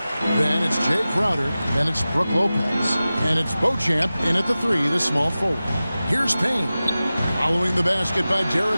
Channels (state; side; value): inverted; both; correlation -0.96